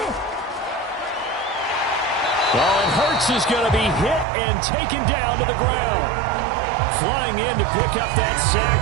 Well, and Hurts is going to be hit and taken down to the ground. Flying in to pick up that sack,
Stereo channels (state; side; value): drops out; left; at 4.2 s